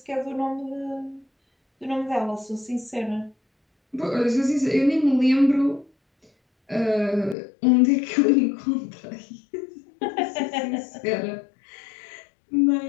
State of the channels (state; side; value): drops out; right; at 7.4 s